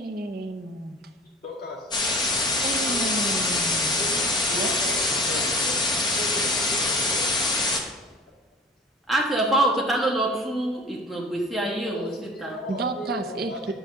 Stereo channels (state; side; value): normal; both; correlation 0.41